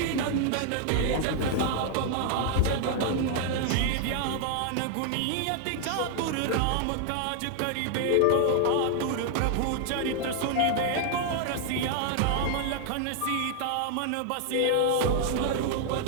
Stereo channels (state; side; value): different; both; correlation 0.00